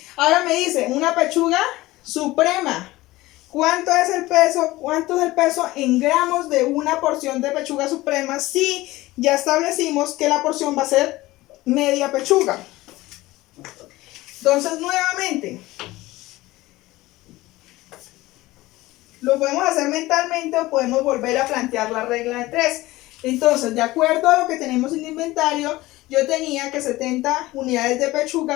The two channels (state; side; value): quieter; right; 18.6 dB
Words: Ahora me dice, una pechuga suprema. ¿Cuánto es el peso? ¿Cuánto es el peso en gramos de una porción de pechuga suprema? Si ya establecimos que la porción va a ser media pechuga. Entonces, nuevamente, lo podemos hacer mentalmente o podemos volver a plantear la regla de 3. Entonces, de acuerdo a lo que tenemos en el inventario, yo tenía que 70 unidades de